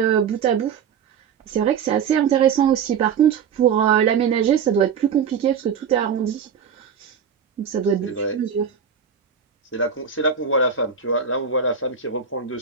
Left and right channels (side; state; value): left; quieter; 7.1 dB